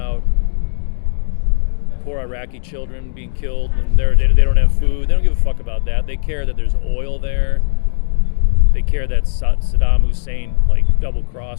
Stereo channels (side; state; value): right; silent; digital silence